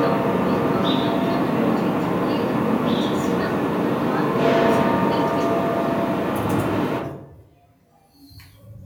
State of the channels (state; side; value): identical; both; correlation 1.00